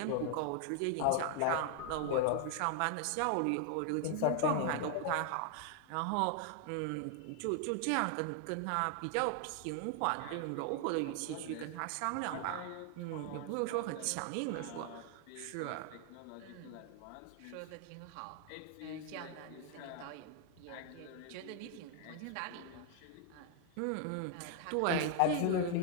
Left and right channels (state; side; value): different; both; correlation 0.00